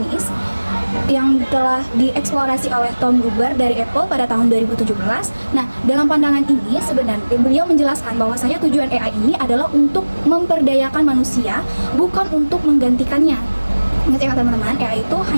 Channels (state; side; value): inverted; both; correlation -1.00